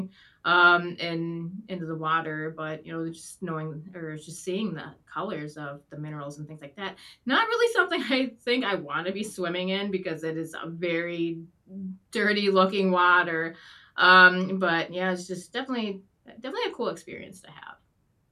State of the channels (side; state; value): both; identical; correlation 1.00